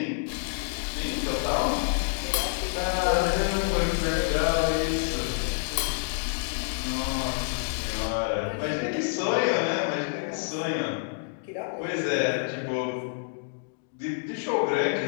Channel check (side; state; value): right; silent; digital silence